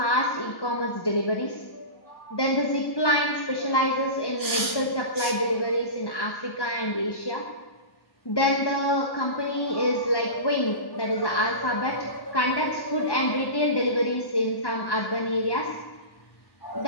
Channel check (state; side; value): late; right; 1.1 ms